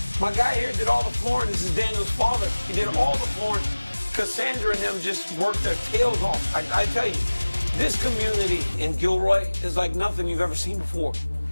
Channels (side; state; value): both; inverted; correlation -1.00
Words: My guy here did all the flooring. This is Daniel's father. He did all the flooring. Cassandra and them just worked their tails off. I tell you, this community in Gilroy is like nothing you've ever seen before.